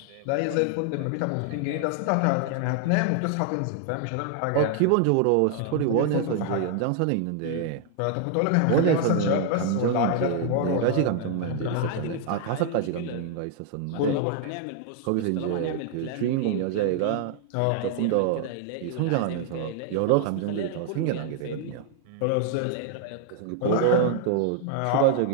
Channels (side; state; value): both; different; correlation 0.00